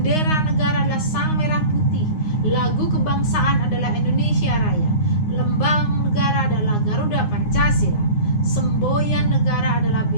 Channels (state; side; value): late; right; 9.6 ms